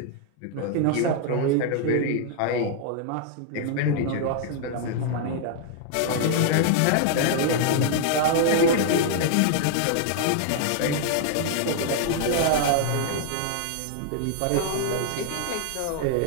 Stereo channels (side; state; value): both; different; correlation 0.00